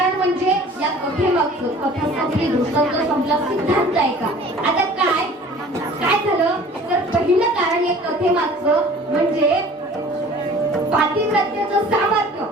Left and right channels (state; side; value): normal; both; correlation 0.47